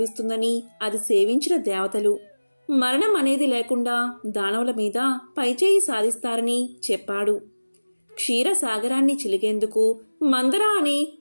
అది సేవించిన దేవతలు మరణం అనేది లేకుండా దానవుల మీద పైచేయి సాధిస్తారని చెప్పాడు. క్షీరసాగరాన్ని చిలికేందుకు మందర అనే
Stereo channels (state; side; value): inverted; both; correlation -1.00